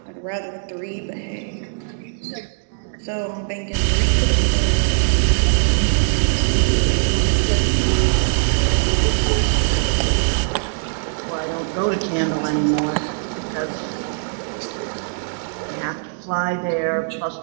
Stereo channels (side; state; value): left; silent; digital silence